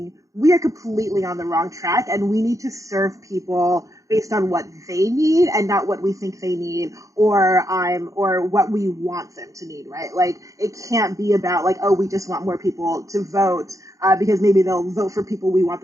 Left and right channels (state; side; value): late; left; 0.16 ms